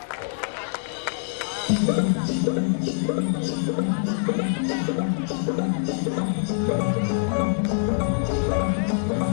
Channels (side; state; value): right; silent; digital silence